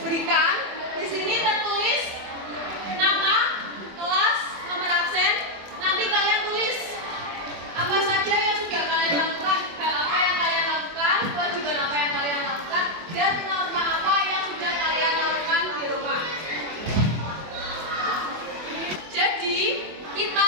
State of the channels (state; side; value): late; left; 24 ms